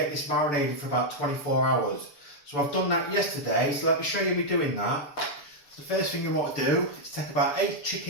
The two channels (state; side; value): late; right; 6.9 ms